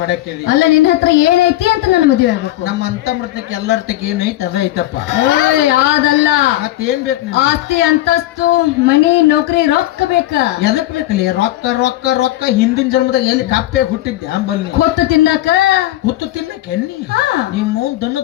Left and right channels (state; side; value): quieter; right; 15.4 dB